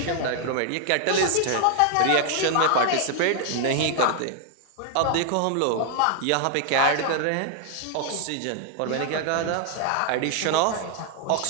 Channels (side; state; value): both; different; correlation 0.00